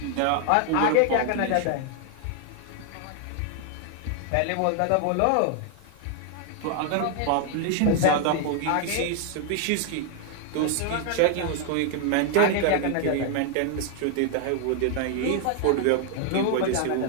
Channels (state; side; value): different; both; correlation 0.00